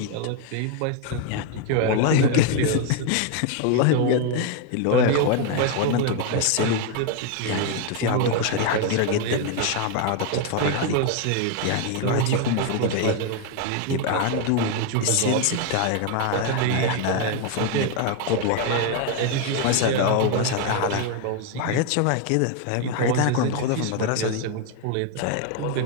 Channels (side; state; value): both; different; correlation 0.01